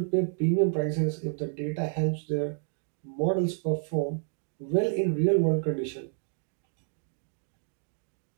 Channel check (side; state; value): left; silent; 58 dB below the other